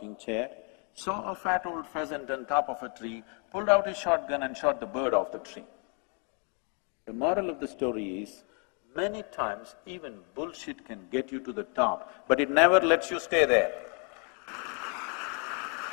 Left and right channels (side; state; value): right; quieter; 36.8 dB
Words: chair saw a fat old pheasant on top of a tree, pulled out his shotgun and shot the bird off the tree. The moral of the story is, many times even bullshit can get you to the top, but it never lets you stay there.